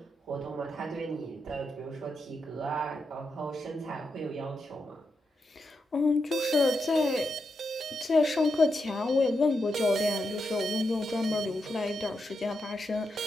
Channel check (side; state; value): both; normal; correlation 0.85